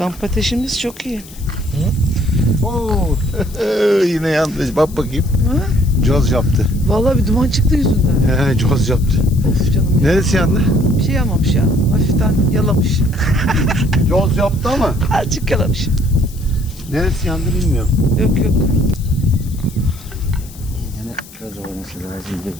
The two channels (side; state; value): left; noise; hiss, 20 dB below the sound